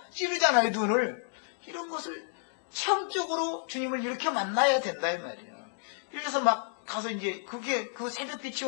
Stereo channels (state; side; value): silent; right; digital silence